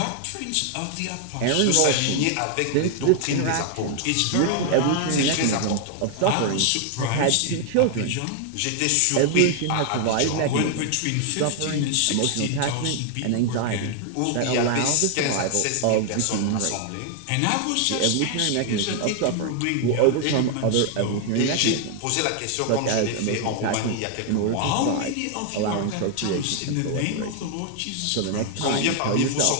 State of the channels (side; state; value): both; different; correlation 0.00